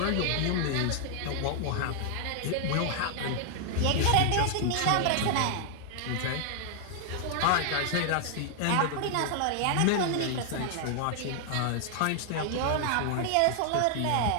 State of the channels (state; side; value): different; both; correlation 0.00